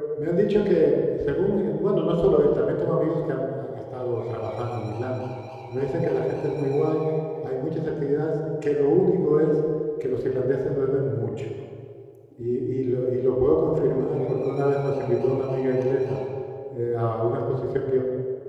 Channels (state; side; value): identical; both; correlation 1.00